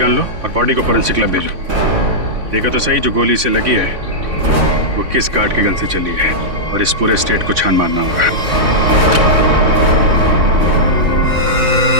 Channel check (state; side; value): late; left; 3.5 ms